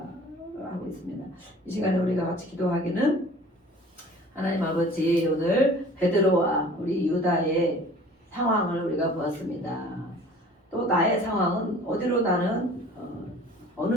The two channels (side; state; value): both; normal; correlation 0.47